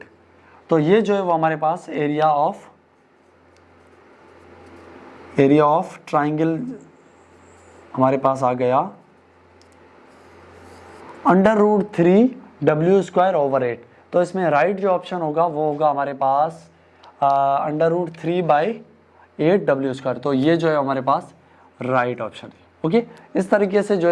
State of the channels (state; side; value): identical; both; correlation 1.00